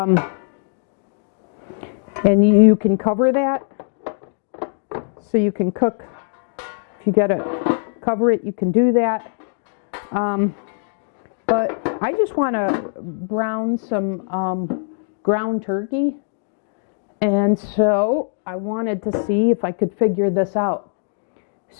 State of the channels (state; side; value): silent; right; digital silence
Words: and you can cover that, so you can cook. If you gotta cover it, you can do that. But I just want to brown some ground turkey, and so I wanted to see if I could figure this out.